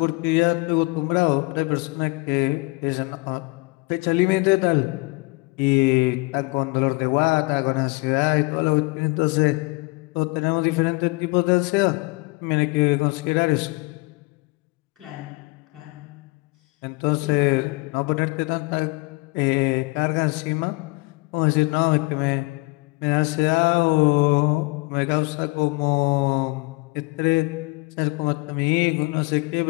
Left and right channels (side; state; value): right; quieter; 26.6 dB